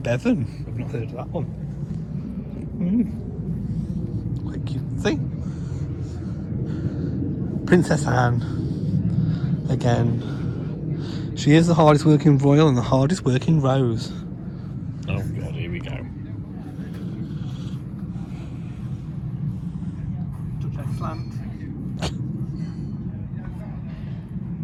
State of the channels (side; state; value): both; identical; correlation 1.00